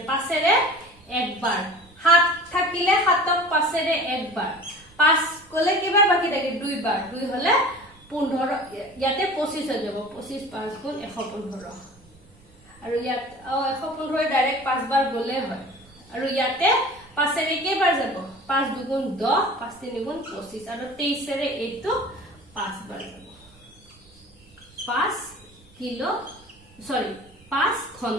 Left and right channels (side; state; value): right; noise; rumble, 27 dB below the sound